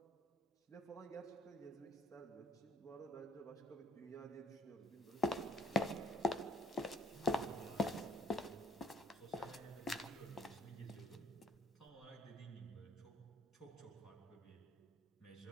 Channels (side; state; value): both; normal; correlation 0.62